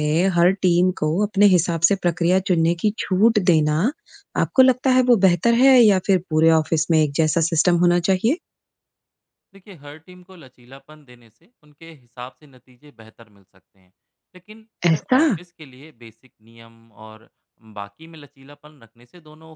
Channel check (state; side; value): identical; both; correlation 1.00